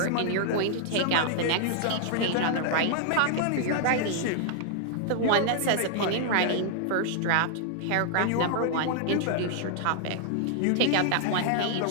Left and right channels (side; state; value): both; different; correlation -0.01